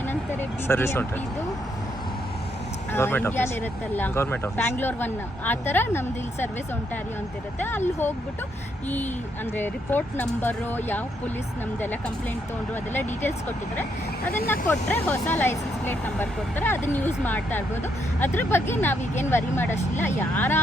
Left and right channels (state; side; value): normal; both; correlation 0.75